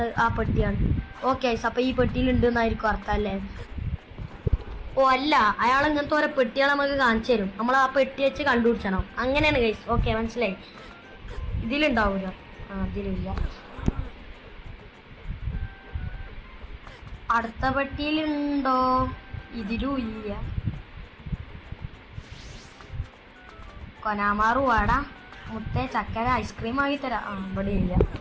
ആ പെട്ടിയാണ്. ഓക്കെ ഗൈസ്, അപ്പോൾ ഈ പെട്ടിയിലുണ്ട് എന്നായിരിക്കും അർത്ഥം അല്ലേ? അല്ല, അയാൾ ഇങ്ങനത്തെ ഓരോ പെട്ടികൾ നമുക്ക് കാണിച്ചു തരും. നമ്മൾ ആ പെട്ടി വെച്ച് കണ്ടുപിടിച്ചണം. അങ്ങനെയാണ് ഗൈസ്. ഓക്കെ, മനസ്സിലായി. ഇതിലുണ്ടാവില്ല. ഇതിലില്ല. അടുത്ത പെട്ടിയിലുണ്ടോ? ഇതിലും ഇല്ല. കൊനാമാറു വാടാ, മുത്തേ ചക്കര ഐസ്ക്രീം ആക്കി തരാം. ഇവിടെ ഇല്ല.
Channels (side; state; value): both; identical; correlation 1.00